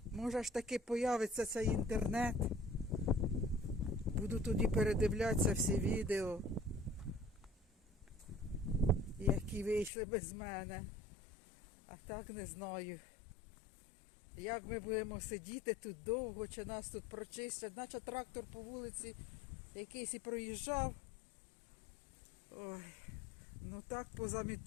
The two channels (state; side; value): drops out; right; at 9.9 s